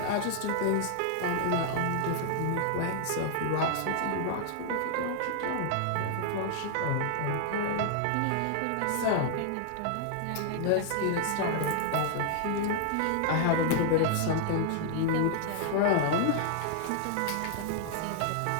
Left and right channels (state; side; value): different; both; correlation -0.01